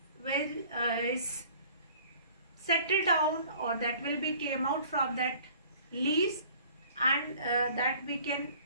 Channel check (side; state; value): both; inverted; correlation -0.51